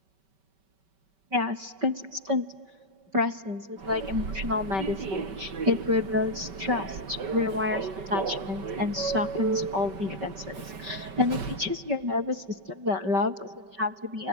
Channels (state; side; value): late; left; 5.2 ms